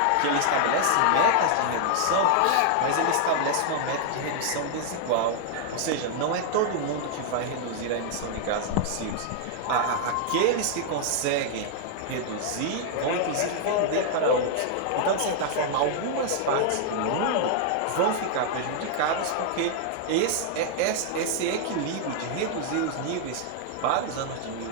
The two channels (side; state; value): both; different; correlation -0.01